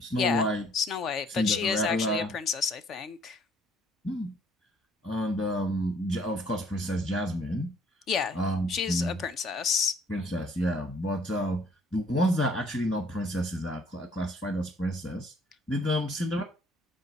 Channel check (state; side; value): normal; both; correlation 0.60